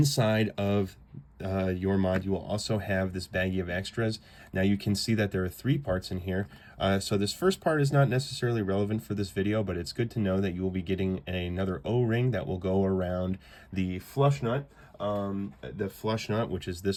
of your mod, you will also have this baggie of extras. Now you can see that there are 3 parts in here. So this first part is not necessarily relevant for this video, but it's good to know that you will be getting another O-ring that will go around the flush nut. Which is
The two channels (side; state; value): both; identical; correlation 1.00